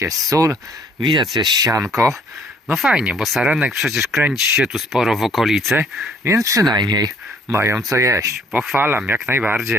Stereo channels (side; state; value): both; normal; correlation 0.61